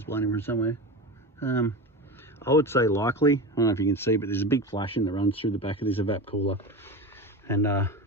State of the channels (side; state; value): both; normal; correlation 0.26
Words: blown in from somewhere. I would say likely, I don't know if you can see, but there's a big flashing that runs through the back of this evap cooler and